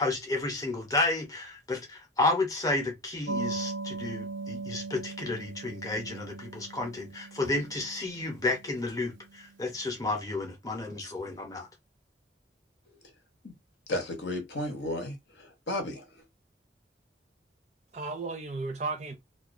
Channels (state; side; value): normal; both; correlation 0.25